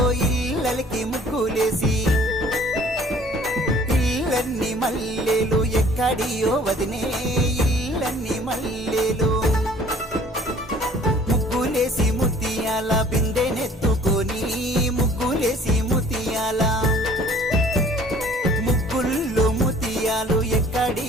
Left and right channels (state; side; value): normal; both; correlation 0.53